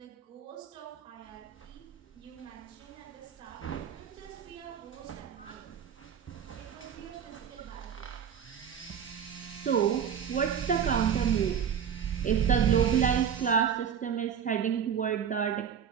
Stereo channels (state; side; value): quieter; left; 8.0 dB